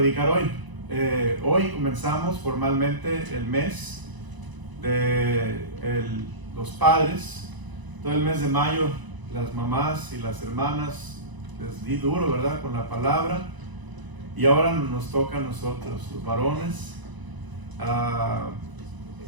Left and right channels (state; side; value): late; left; 1.0 ms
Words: hoy. Hoy comenzamos formalmente el mes de los padres. Todo el mes de mayo, las mamás y las hermanas les di duro, ¿verdad?, con la palabra. Y ahora nos toca a nosotros, los varones.